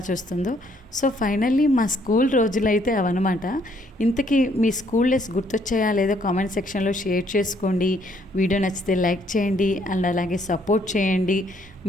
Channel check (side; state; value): both; normal; correlation 0.67